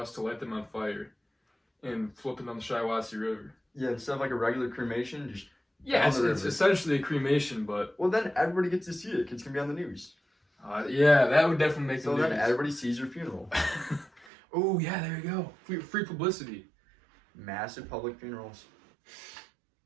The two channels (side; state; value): left; drops out; at 14.2 s